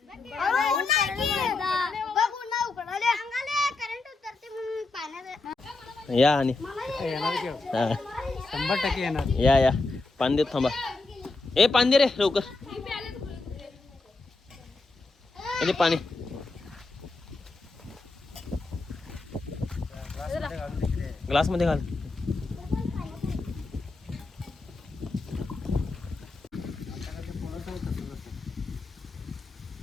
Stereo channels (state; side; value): quieter; right; 3.5 dB